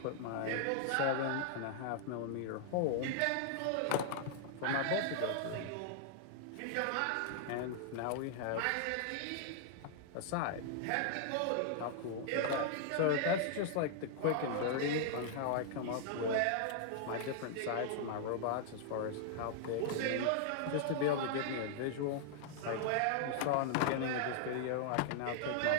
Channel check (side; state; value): both; different; correlation -0.01